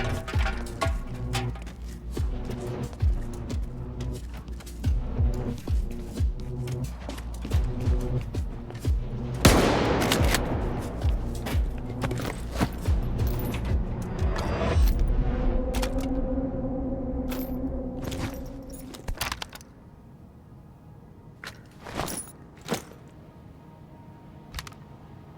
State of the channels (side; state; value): both; identical; correlation 1.00